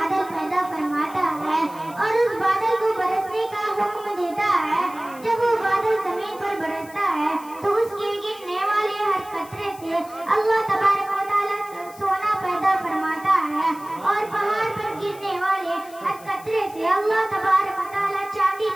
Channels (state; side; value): noise; left; hiss, 21 dB below the sound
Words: پیدا فرماتا ہے اور اس بادل کو برسنے کا حکم دیتا ہے جب وہ بادل زمین پر برستا ہے تو اس کے گرنے والے ہر قطرے سے اللہ تبارک و تعالی سونا پیدا فرماتا ہے اور پہاڑ پر گرنے والے ہر قطرے سے اللہ تبارک و تعالی چاندی